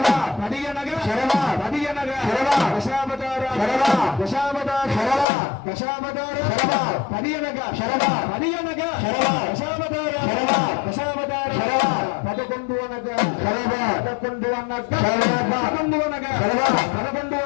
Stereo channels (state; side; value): drops out; right; at 5.2 s